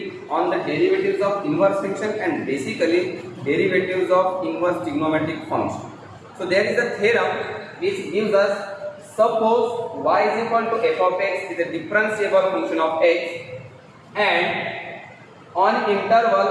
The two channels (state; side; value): identical; both; correlation 1.00